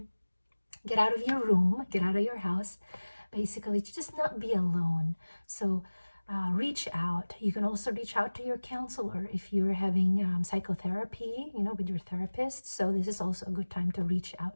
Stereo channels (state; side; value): inverted; both; correlation -1.00